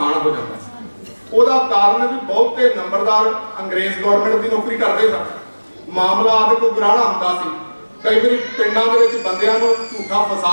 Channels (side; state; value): both; inverted; correlation -1.00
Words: ਹੋ ਜਾਂਦਾ। ਉਹਦਾ ਕਾਰਨ ਵੀ ਬਹੁਤੇ ਨੰਬਰਦਾਰ ਅੰਗਰੇਜ਼ ਗਵਰਨਮੈਂਟ ਦੀ ਨੌਕਰੀ ਕਰਦੇ ਸਨ। ਮਾਮਲਾ ਆਦਿ ਕੋਈ ਗਰਾਣਾ ਹੁੰਦਾ ਸੀ। ਕਈ ਵਾਰੀ ਪਿੰਡਾਂ ਦੇ ਵਿੱਚ ਬੰਦਿਆਂ ਨੂੰ ਝੂਠਾ